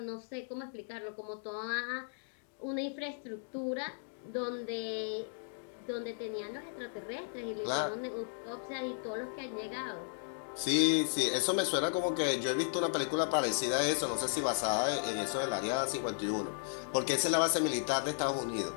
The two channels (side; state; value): right; silent; digital silence